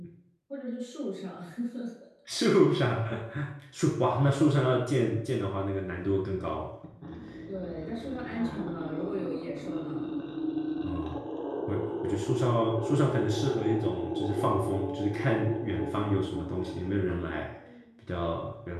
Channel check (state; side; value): identical; both; correlation 1.00